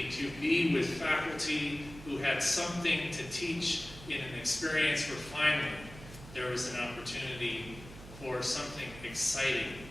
to be with faculty who had something to teach in an experience where finally there was an opportunity for something exciting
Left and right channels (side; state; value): right; noise; hum, 16 dB below the sound